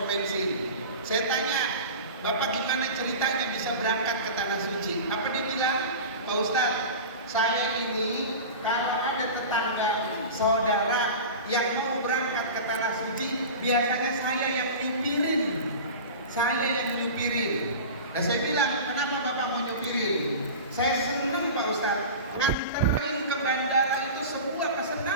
bensin. Saya tanya, Bapak gimana ceritanya bisa berangkat ke Tanah Suci? Apa dia bilang? Pak Ustadz, saya ini kalau ada tetangga, saudara yang mau berangkat ke Tanah Suci, biasanya saya yang nyupirin. Nah saya bilang, kenapa Bapak mau nyupirin? Saya senang Pak Ustadz, nganterin ke bandara itu sebuah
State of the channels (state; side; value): inverted; both; correlation -0.32